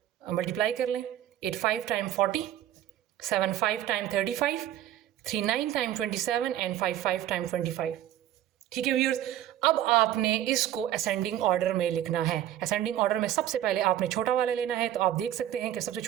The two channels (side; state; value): left; quieter; 12.2 dB